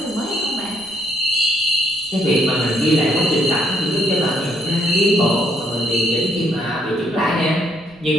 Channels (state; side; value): noise; right; rumble, 25 dB below the sound